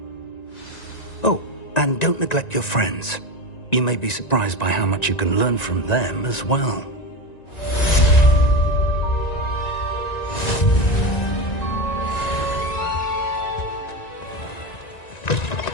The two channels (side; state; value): right; late; 1.9 ms